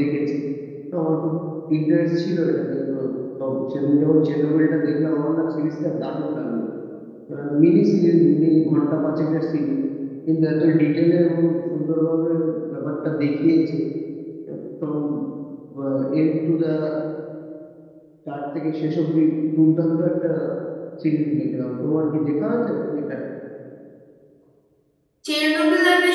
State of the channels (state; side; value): identical; both; correlation 1.00